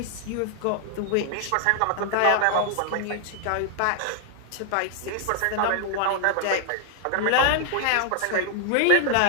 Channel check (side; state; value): both; different; correlation 0.00